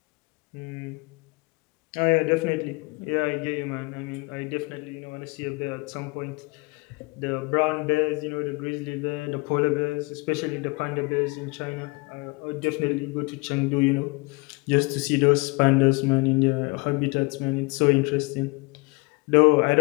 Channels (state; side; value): quieter; right; 27.1 dB